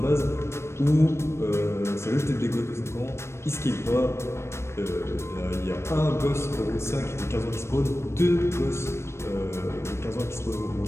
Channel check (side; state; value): right; late; 0.13 ms